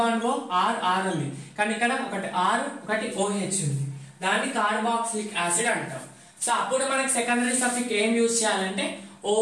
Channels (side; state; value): both; identical; correlation 1.00